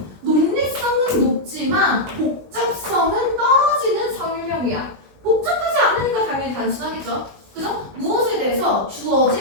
논리성은 높지만 복잡성은 떨어지는 설명이야. 복잡하지 않으니까 당연히 단순하겠죠. 그죠? 무엇에 대해서?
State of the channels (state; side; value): late; left; 20 ms